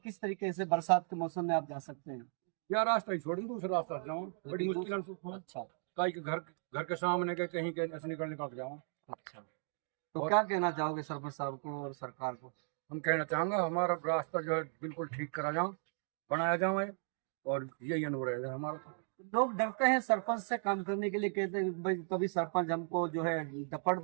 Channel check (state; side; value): silent; left; 54 dB below the other